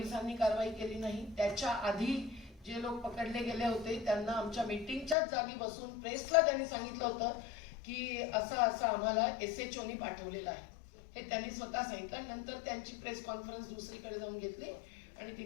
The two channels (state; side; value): drops out; right; at 5.2 s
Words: कारवाई केली नाही. त्याच्या आधी जे लोक पकडले गेले होते त्यांना आमच्या मीटिंगच्याच जागी बसून प्रेसला त्यांनी सांगितलं होतं की असं आम्हाला SHOनी पाठवलेलं आहे, हे त्यांनी स्वतः सांगितलं. नंतर त्यांची प्रेस कॉन्फरन्स दुसरीकडे जाऊन घेतली आणि